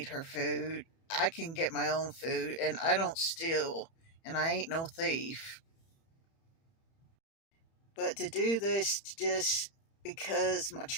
her food. I can get my own food, and I don't steal, and I ain't no thief. But to do this just because my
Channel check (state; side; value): late; right; 30 ms